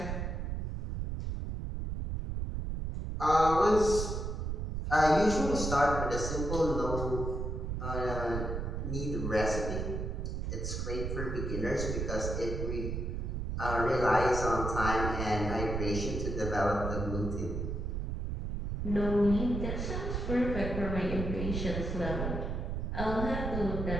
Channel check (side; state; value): right; noise; rumble, 3 dB below the sound